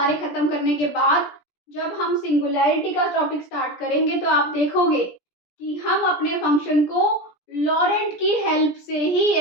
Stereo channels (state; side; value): late; right; 17 ms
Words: खत्म करने के बाद जब हम सिंगुलैरिटी का टॉपिक स्टार्ट करेंगे तो आप देखोगे कि हम अपने फंक्शन को लॉरेंट की हेल्प से ही